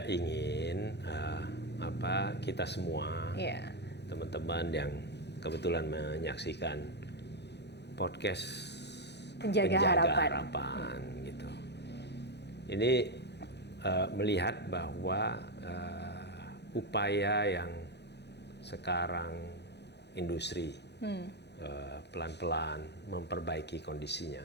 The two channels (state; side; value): late; right; 0.49 ms